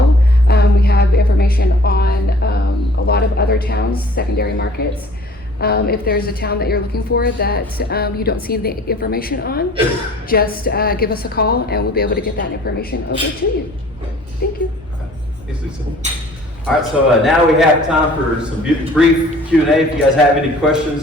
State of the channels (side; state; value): both; normal; correlation 0.51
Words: We have information on a lot of other towns, secondary markets. If there's a town that you're looking for that you don't see the information on, just give us a call and we'll be able to get that information over to you. Thank you. Thanks, Lisa. All right, so now we have time for some brief Q&A. If you guys have any